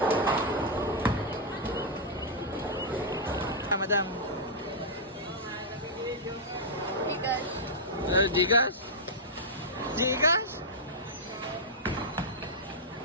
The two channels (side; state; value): both; normal; correlation -0.08